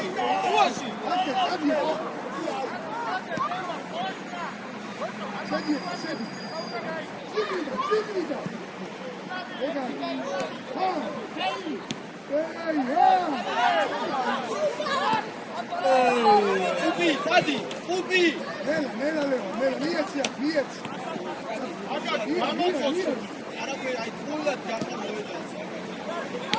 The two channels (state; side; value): identical; both; correlation 1.00